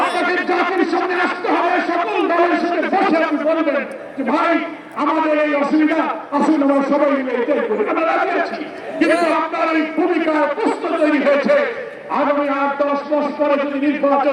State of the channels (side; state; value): both; identical; correlation 1.00